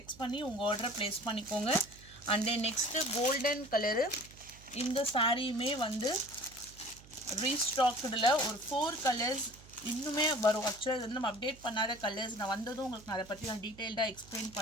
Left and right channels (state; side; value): noise; right; hum, 21 dB below the sound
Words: பண்ணி உங்கள் ஆர்டரை ப்ளேஸ் பண்ணிக்கோங்க. And then next golden colour. இந்த சாரியுமே வந்து ரீஸ்டாக்டில் ஒரு 4 கலர்ஸ் இன்னுமே வரும். ஆக்சுவலாக இது வந்து நம்ம அப்டேட் பண்ணாத கலர்ஸ். நான் வந்ததும் உங்களுக்கு நான் அதை பற்றி நான் டீட்டெயில்டாக எக்ஸ்பிளைன்